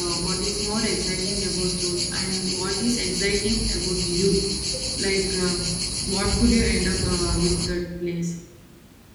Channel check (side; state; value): both; identical; correlation 1.00